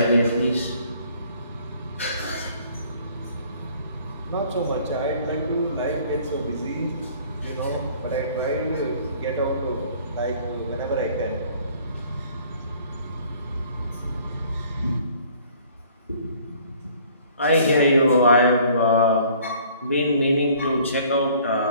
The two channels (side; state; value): both; inverted; correlation -0.56